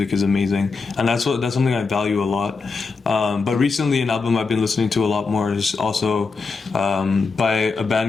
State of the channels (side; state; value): right; quieter; 4.5 dB